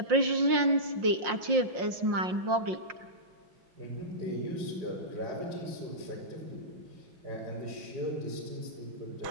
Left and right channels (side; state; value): left; late; 5.6 ms